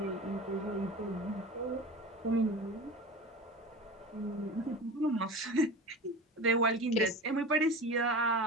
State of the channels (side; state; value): both; normal; correlation 0.32